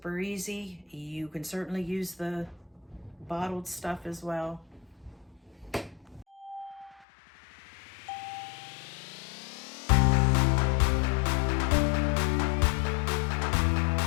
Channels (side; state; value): right; drops out; at 7.1 s